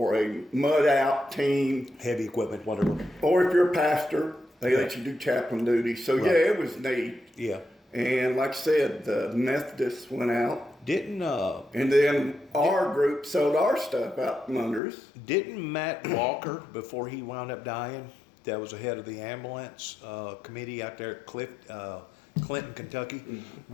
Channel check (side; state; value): right; drops out; at 14.8 s